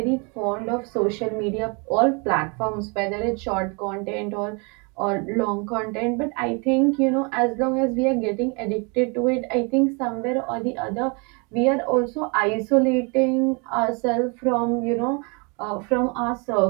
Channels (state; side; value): quieter; left; 32.4 dB